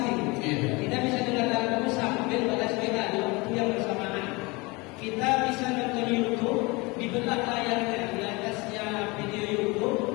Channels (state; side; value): quieter; right; 25.5 dB